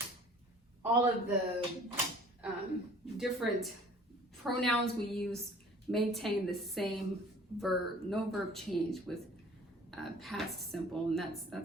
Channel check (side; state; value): both; normal; correlation 0.50